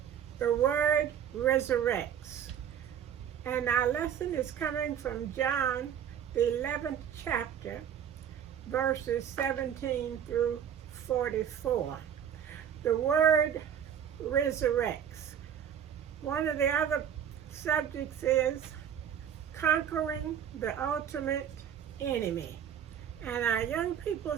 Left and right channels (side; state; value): left; quieter; 9.0 dB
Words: the word resurrects. And our lesson is coming from John, the 11th chapter, verses 17 through 44. The word resurrects. One of the other subjects is conquering the ultimate enemy. And our young